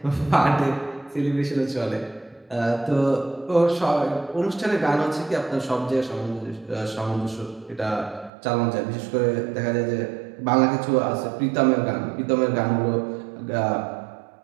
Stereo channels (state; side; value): drops out; left; at 8.3 s